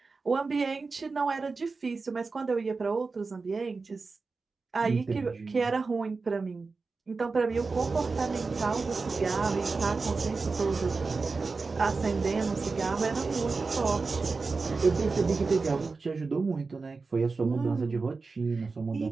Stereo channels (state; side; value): quieter; left; 4.2 dB